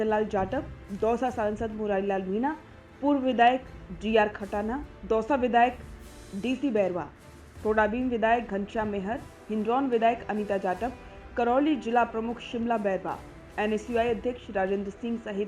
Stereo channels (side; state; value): both; identical; correlation 1.00